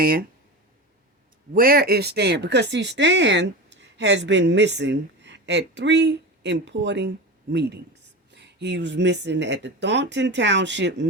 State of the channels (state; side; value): normal; both; correlation 0.26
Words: Where is Stan? Because, see, Stan has been missing at three important meetings. He was missing at the Thornton Township